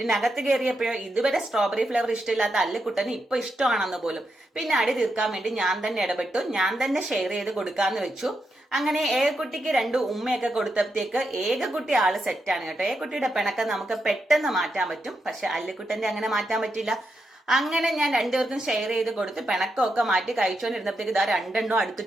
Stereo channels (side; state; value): both; normal; correlation 0.84